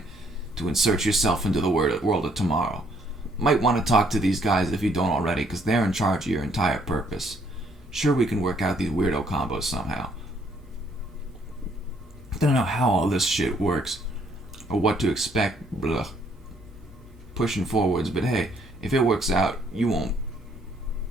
to insert yourself into the world of tomorrow. Might want to talk to these guys if you don't already, because they're in charge of your entire purpose. Sure, we can work out these weirdo combos somehow. I don't know how all this shit works, or what to expect, blah, pushing forwards, but hey, if it works out, you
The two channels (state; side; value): normal; both; correlation 0.67